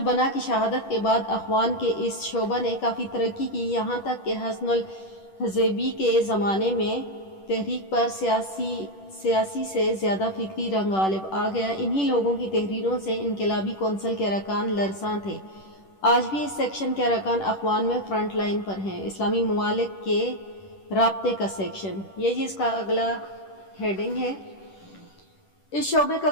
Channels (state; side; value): late; right; 10 ms